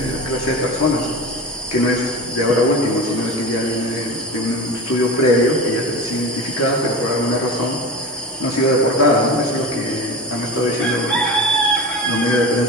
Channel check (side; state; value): both; normal; correlation 0.29